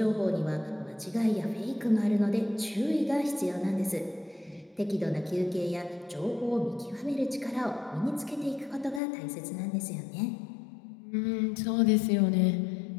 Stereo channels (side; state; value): right; drops out; at 9.0 s